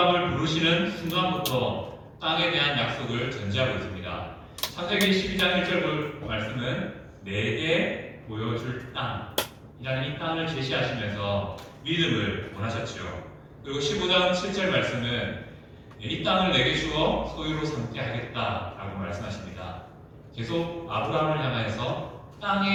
부르시는 순간부터 땅에 대한 약속을 전제하고 있습니다. 창세기 12장 1절 말씀은 내게 보여줄 땅이라는 이 땅을 제시하시면서 믿음을 원하셨죠. 그리고 15장 7절 말씀은 이 땅을 내게 주어 소유로 삼게 하겠다라고 말씀하십니다. 계속 아브라함을 향하여서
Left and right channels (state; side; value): identical; both; correlation 1.00